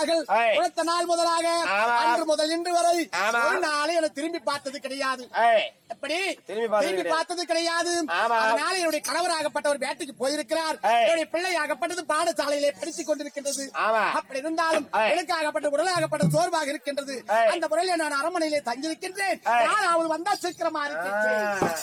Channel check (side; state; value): both; identical; correlation 1.00